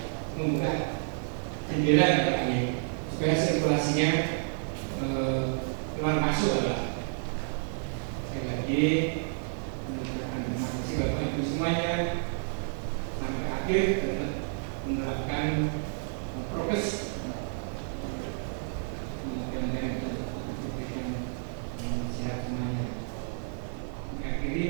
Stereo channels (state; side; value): silent; left; digital silence